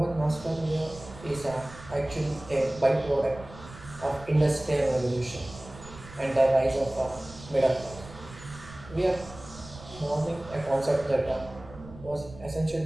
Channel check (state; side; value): noise; right; rumble, 17 dB below the sound